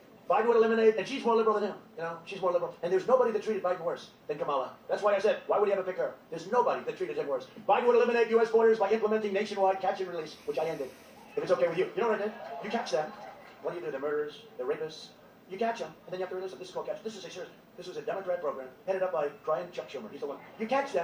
Biden would eliminate, and she's more liberal than him. You know, she's more liberal. And there's nobody that treated Biden worse than Kamala. That's why I said, why would he ever pick her? There's nobody that treated him worse. Biden would eliminate U.S. borders by implementing nationwide catch and release, which I ended. If it's okay with you. You know what I did? You catch them. What do? They're murderers, they're rapists, You catch them, and then you have to release them. This is called catch. This is a serious. This was a Democrat program headed up by Chuck Schumer. He's the one. You catch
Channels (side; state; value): both; identical; correlation 1.00